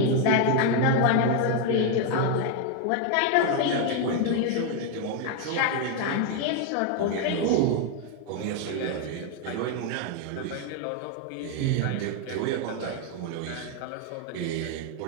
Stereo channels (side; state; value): both; different; correlation 0.01